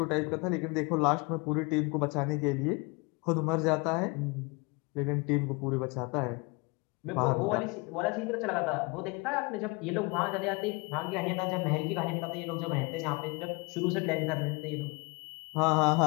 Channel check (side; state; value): right; quieter; 27.8 dB